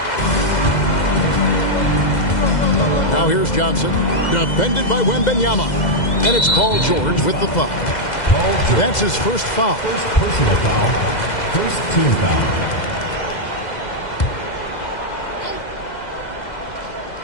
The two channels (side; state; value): right; late; 2.0 ms